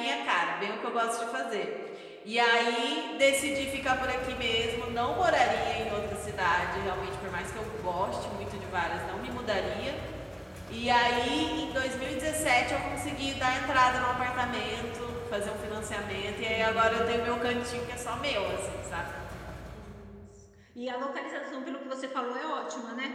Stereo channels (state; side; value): identical; both; correlation 1.00